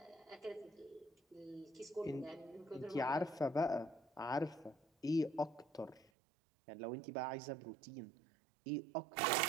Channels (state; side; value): drops out; left; at 6.1 s